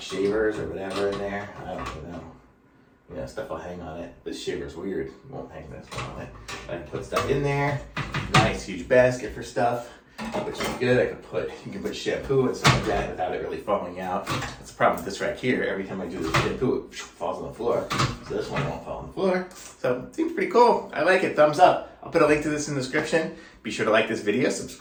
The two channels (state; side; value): identical; both; correlation 1.00